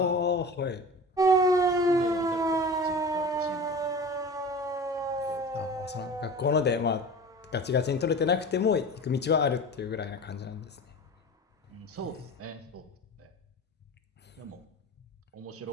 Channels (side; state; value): both; normal; correlation 0.35